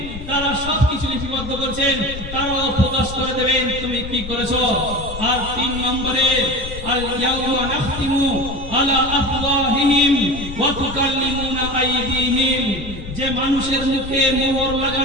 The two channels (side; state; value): left; noise; rumble, 10 dB below the sound